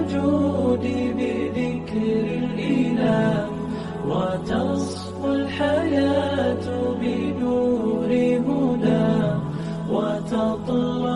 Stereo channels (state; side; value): identical; both; correlation 1.00